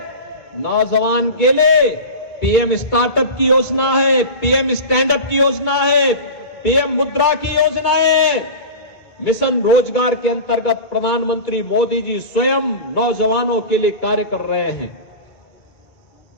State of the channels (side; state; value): right; late; 2.3 ms